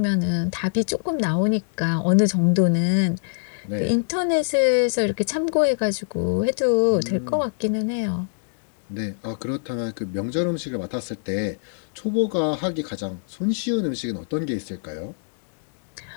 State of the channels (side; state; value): right; silent; 62 dB below the other